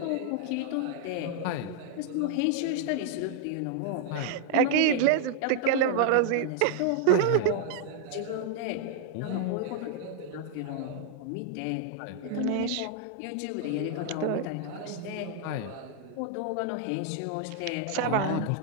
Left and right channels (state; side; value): different; both; correlation 0.00